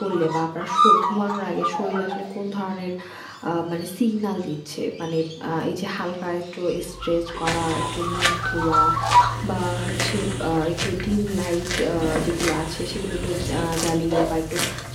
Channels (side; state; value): both; identical; correlation 1.00